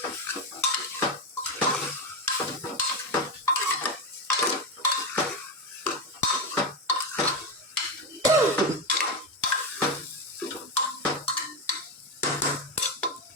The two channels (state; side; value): normal; both; correlation 0.13